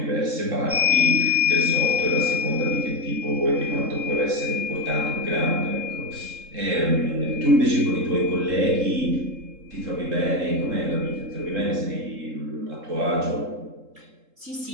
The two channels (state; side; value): late; left; 3.7 ms